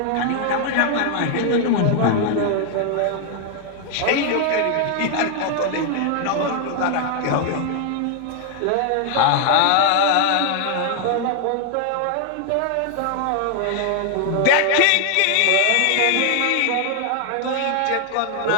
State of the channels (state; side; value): different; both; correlation 0.00